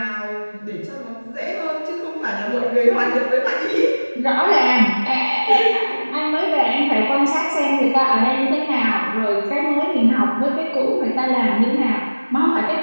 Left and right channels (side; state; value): both; inverted; correlation -1.00